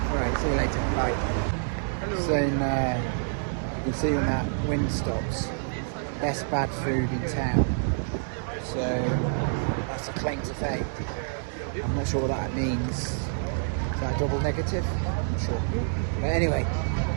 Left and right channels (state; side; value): silent; left; digital silence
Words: Right, see you later. Bye. So you can see when that wind stops, best bad food in town. So that's a claim to fame. I'm not sure what that means. Is that a double negative? I'm not sure. But anyway,